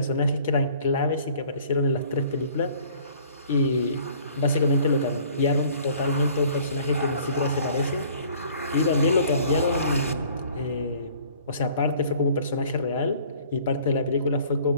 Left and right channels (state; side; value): inverted; both; correlation -0.54